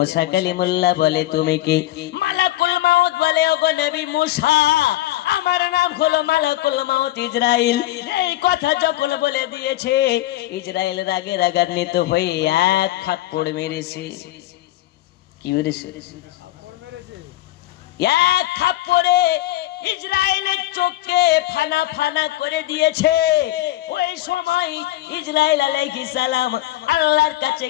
কালিমুল্লাহ বলে, তুমি কি? মালাকুল মাউত বলে, ওগো নবী মূসা, আমার নাম হলো মালাকুল মাউত ইসরাইল। এই কথা যখন বলে দিয়েছে, ইসরাইল রাগে রাগান্বিত হয়ে এক থাপ্পড় মেরেছে। কি মেরেছে? এক থাপ্পড়ে ইসরাইলের চোখকে ফানা ফানা করে দিয়েছে। ওই সময় ইসরাইল আলাইহিস সালাম আল্লাহর কাছে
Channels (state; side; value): quieter; right; 15.9 dB